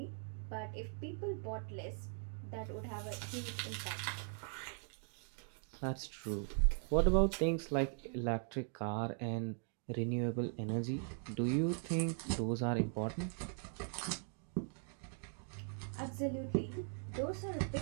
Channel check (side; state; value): left; silent; 51 dB below the other